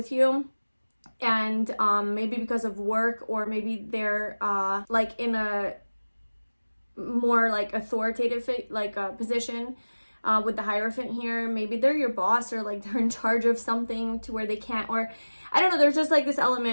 you, and maybe because of work, or maybe they're like in a more like authoritative like position, with the Hierophant here. Maybe they're your boss, or like they're in charge of something to where they can't, or I don't know, there's just like this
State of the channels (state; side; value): inverted; both; correlation -1.00